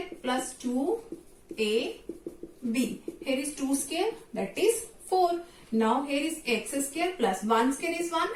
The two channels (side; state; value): both; identical; correlation 1.00